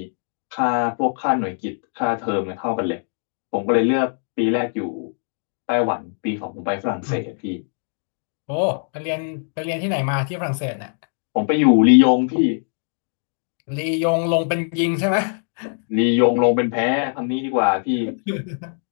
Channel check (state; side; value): silent; right; 58 dB below the other